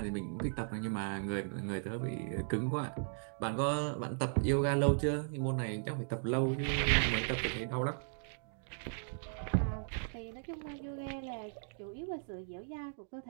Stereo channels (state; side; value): silent; left; digital silence